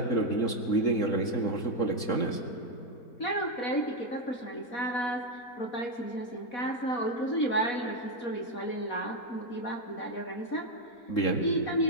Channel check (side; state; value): right; late; 3.7 ms